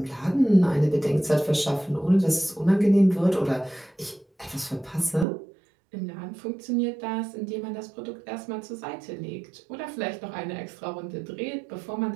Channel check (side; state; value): left; drops out; at 5.2 s